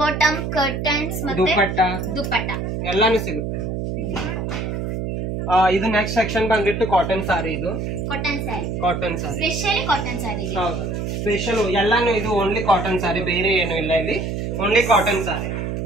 ಕರ್ಟನ್ಸ್ ಮತ್ತೆ ದುಪಟ್ಟ ಎಲ್ಲಾನು ಸಿಗುತ್ತೆ. ಇದು ನೆಕ್ಸ್ಟ್ ಸೆಕ್ಷನ್ ಬಂದ್ಬಿಟ್ಟು ಕಾಟನ್ ಸಾರಿ. ಇದು ಕಾಟನ್ ಸ್ಯಾರಿ, ಕಾಟನ್ ಸಾರಿ ಸ್ಪೆಷಲಿ ಕಾಟನ್ ಸ್ಯಾರಿ. ಹೌದು, ಸ್ಪೆಷಲ್ ಎಲ್ಲಾನು ಇದು ಓನ್ಲಿ ಕಾಟನ್ ಸಾರಿ, ಬೇರೆ ಏನು ಇಲ್ಲ ಇಲ್ಲಿ, ಓನ್ಲಿ ಕಾಟನ್ ಸಾರಿ.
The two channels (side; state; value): right; noise; hum, 3 dB below the sound